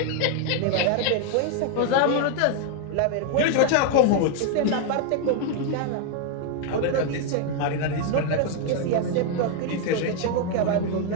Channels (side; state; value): both; different; correlation 0.01